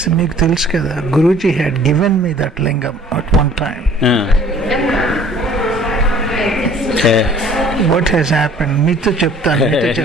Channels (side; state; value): both; normal; correlation 0.53